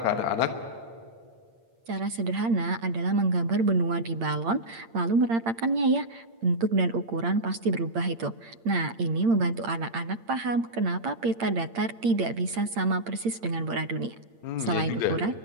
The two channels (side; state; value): left; late; 8.8 ms